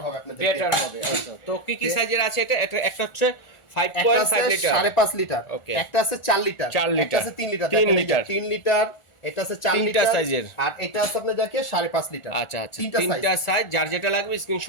হবে, আপনাদের বেটার হবে। তো কি সাইজের আছে এটা? একটা হচ্ছে 5.5 লিটার, 5.5 লিটার, একটা আছে 4 লিটার, একটা আছে 3 লিটার, 3 লিটার, এটা আছে 4 লিটার সাইজের, আর এটা আছে আপনি যাকে 5.5 লিটার। আচ্ছা, তিনটা সাইজ, যার যেটা লাগবে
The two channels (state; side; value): late; right; 1.4 ms